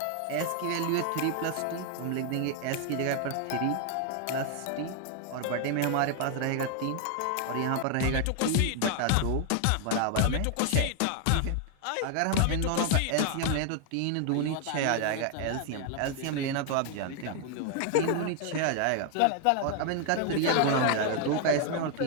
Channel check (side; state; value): both; different; correlation 0.00